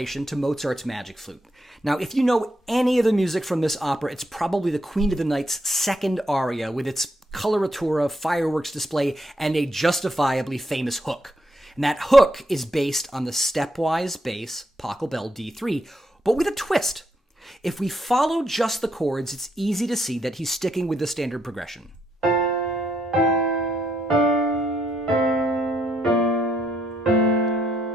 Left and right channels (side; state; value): both; normal; correlation 0.77